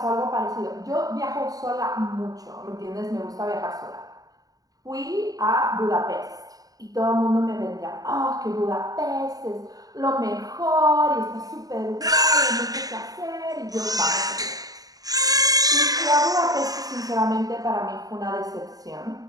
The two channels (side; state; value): left; late; 0.18 ms